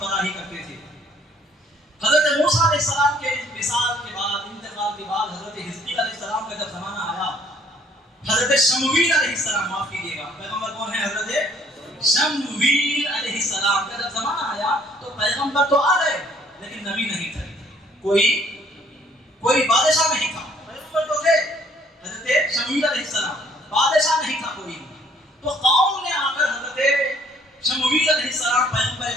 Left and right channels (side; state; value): both; normal; correlation 0.61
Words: کرتے تھے. حضرت موسیٰ علیہ السلام کے وصال کے بعد، انتقال کے بعد، حضرت حزقیل علیہ السلام کا جب زمانہ آیا، حضرت شمویل علیہ السلام، معاف کیجیے گا، پیغمبر کون ہے؟ حضرت شمویل علیہ السلام کا جب زمانہ آیا تو پیغمبر تو آ گئے لیکن نبی نہیں تھے. کوئی بادشاہ نہیں تھا. پیغمبر تو تھے حضرت شمویل علیہ السلام، بادشاہ نہیں تھا کوئی. تو قوم نے آ کر حضرت شمویل علیہ السلام پیغمبر